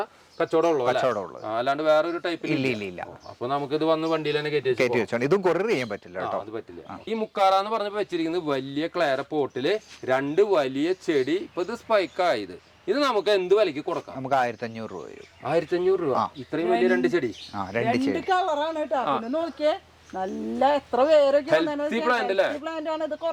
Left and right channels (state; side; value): identical; both; correlation 1.00